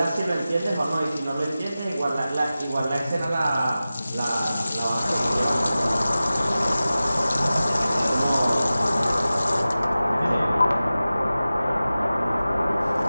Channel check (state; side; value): inverted; both; correlation -0.95